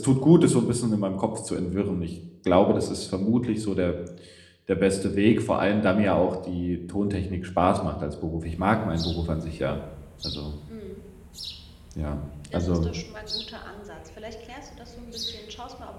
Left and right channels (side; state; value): both; identical; correlation 1.00